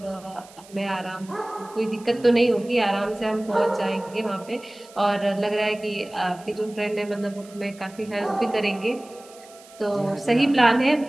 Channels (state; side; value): noise; right; hiss, 23 dB below the sound